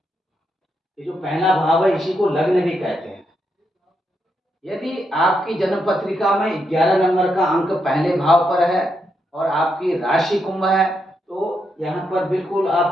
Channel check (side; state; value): both; normal; correlation 0.81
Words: ये जो पहला भाव है इसी को लग्न भी कहते हैं। यदि आपकी जन्म पत्रिका में 11 नंबर का अंक पहले भाव पर है और आपकी राशि कुंभ है, तो यहाँ पर बिल्कुल